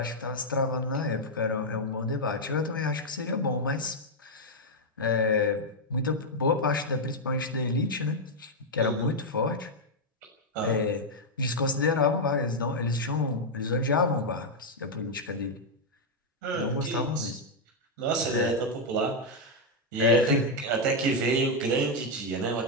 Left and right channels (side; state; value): both; normal; correlation -0.01